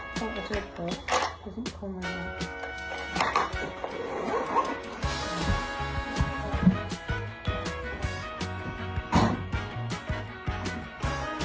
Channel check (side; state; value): both; identical; correlation 1.00